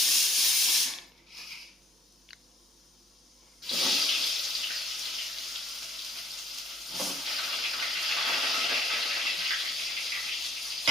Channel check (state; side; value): normal; both; correlation 0.63